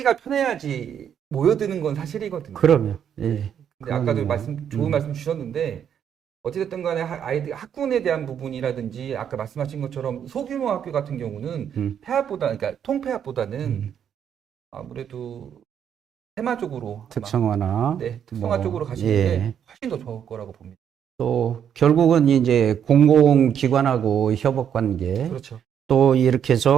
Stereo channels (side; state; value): left; quieter; 8.7 dB